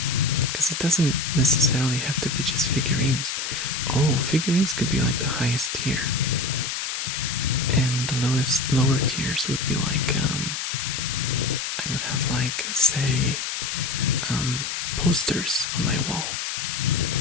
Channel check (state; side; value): noise; left; hiss, 3 dB below the sound